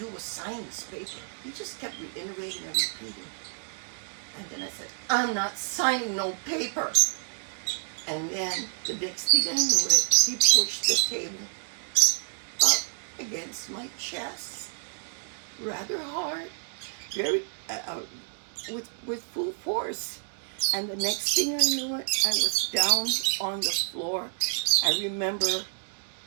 was sign this paper." He just kept reiterating and repeating. And then I said, "I'm not signing no paper." And then the next thing I knew it, he pushed the table up against my chest, rather hard, very with full force. And the next thing I knew it, I was down on the floor. I remember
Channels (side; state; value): left; silent; 59 dB below the other